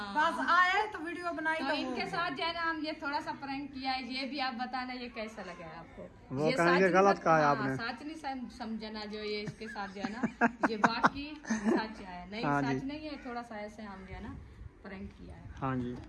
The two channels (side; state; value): both; identical; correlation 1.00